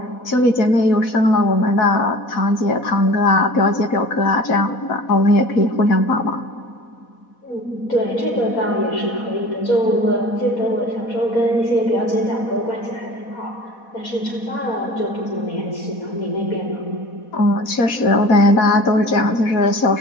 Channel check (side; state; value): right; late; 4.1 ms